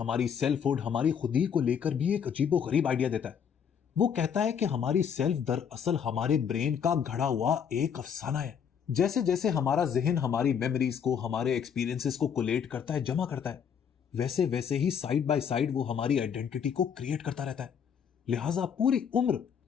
सेल्फहुड, हमारी खुदी को लेकर भी एक अजीबोगरीब आइडिया देता है। वो कहता है कि हमारी सेल्फ दरअसल हमारे ब्रेन का घड़ा हुआ एक अफसाना है। जैसे जैसे हमारा जहन हमारी मेमोरीज को, हमारे एक्सपीरियंसेस को कोलेट करता है, जमा करता है, वैसे वैसे ही साइड बाय साइड वो हमारी आइडेंटिटी को क्रिएट करता रहता है। लिहाजा पूरी उम्र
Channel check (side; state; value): right; quieter; 7.6 dB